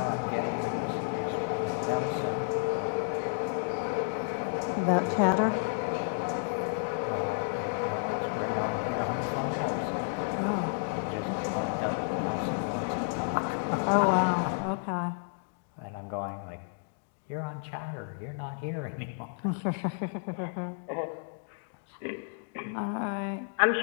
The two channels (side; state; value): right; silent; digital silence